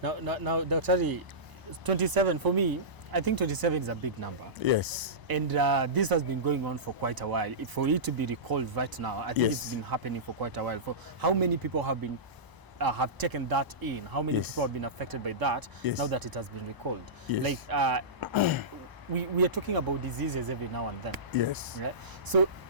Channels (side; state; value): left; late; 1.0 ms